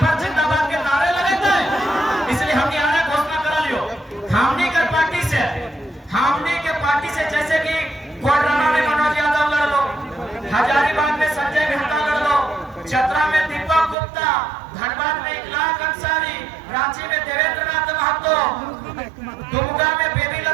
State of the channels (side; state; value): left; drops out; at 14.0 s